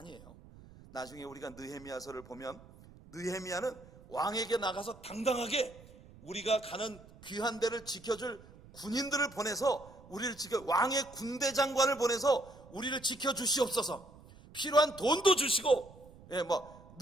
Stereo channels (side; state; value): right; noise; rumble, 21 dB below the sound